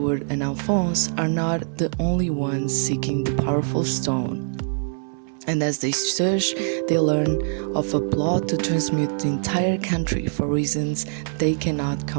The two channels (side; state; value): left; silent; 59 dB below the other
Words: and Alphonse are not the only ones seeking the powerful stone. And as they search, they learn of a plot to transmute the entire country for reasons they cannot